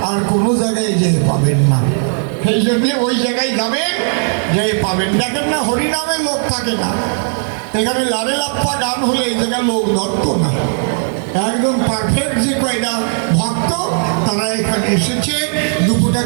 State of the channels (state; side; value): silent; left; 61 dB below the other